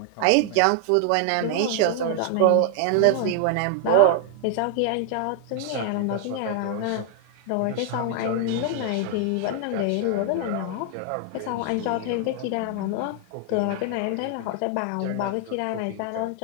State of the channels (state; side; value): different; both; correlation 0.00